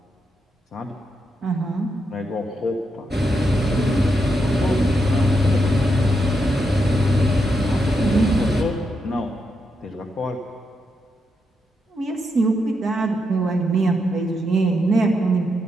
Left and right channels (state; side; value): normal; both; correlation 0.82